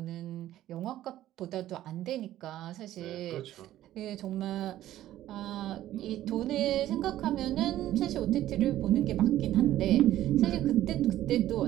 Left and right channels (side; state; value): left; quieter; 13.5 dB